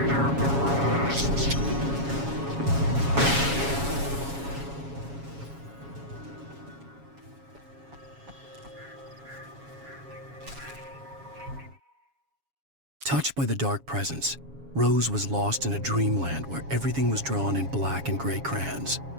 arrest. Touched by the dark presence, Rose was lost in a dreamland where everything was drawn in black and gray crayons.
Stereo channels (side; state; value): left; late; 7.2 ms